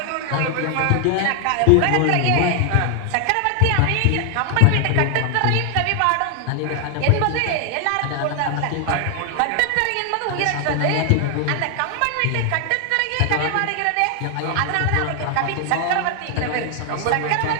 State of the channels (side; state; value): both; different; correlation 0.00